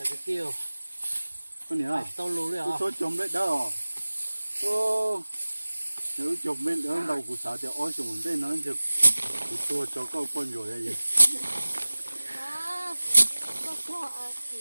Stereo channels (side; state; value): both; inverted; correlation -1.00